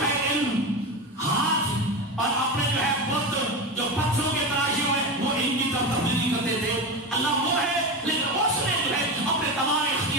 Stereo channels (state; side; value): normal; both; correlation 0.21